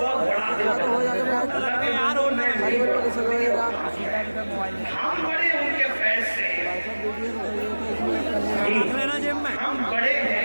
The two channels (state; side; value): inverted; both; correlation -1.00